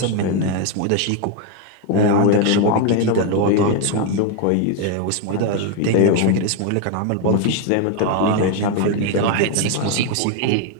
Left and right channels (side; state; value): both; different; correlation 0.01